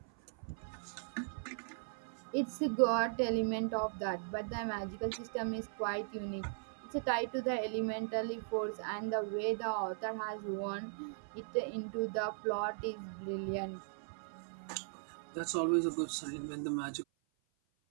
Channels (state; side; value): silent; left; 52 dB below the other